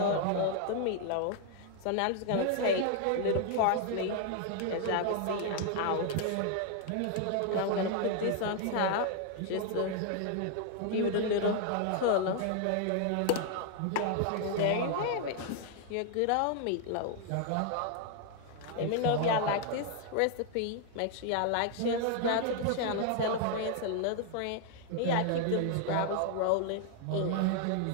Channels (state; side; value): different; both; correlation 0.00